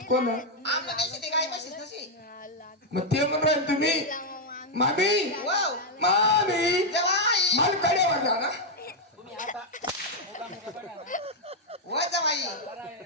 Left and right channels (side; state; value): both; normal; correlation -0.01